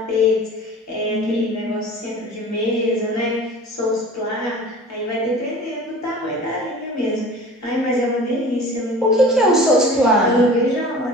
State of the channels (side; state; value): both; normal; correlation 0.41